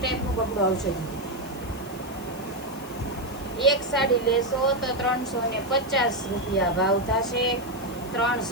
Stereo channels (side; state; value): right; noise; hiss, 20 dB below the sound